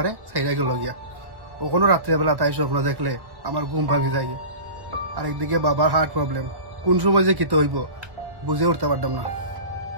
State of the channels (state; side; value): late; left; 1.1 ms